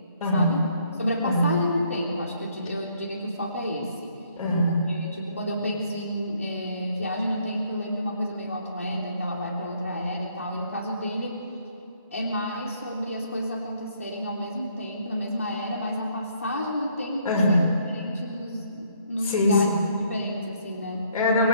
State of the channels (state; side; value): inverted; both; correlation -0.67